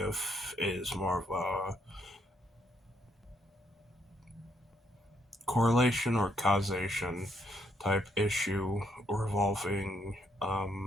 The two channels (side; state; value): both; normal; correlation 0.74